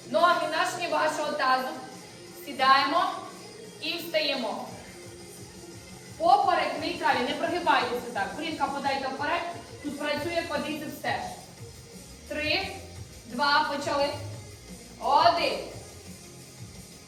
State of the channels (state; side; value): identical; both; correlation 1.00